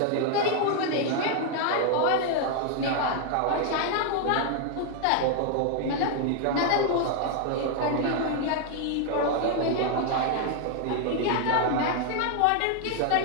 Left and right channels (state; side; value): different; both; correlation 0.00